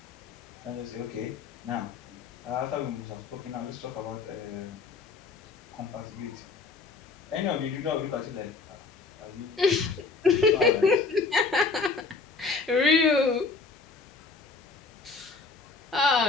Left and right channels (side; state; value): right; quieter; 4.3 dB